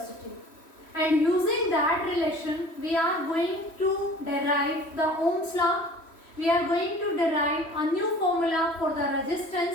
And using that relation, we are going to derive the Ohm's law. We are going to derive a new formula for the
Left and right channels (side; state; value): right; late; 3.1 ms